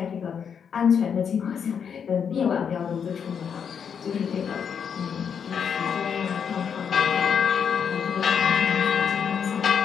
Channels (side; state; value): right; quieter; 7.2 dB